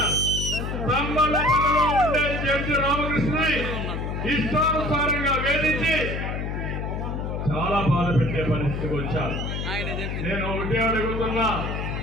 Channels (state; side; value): noise; left; hum, 3 dB below the sound